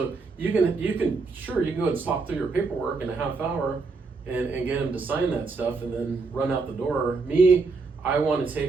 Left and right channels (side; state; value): left; quieter; 4.2 dB